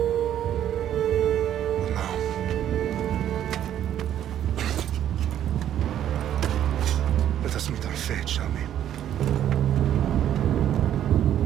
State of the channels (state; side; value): quieter; left; 10.8 dB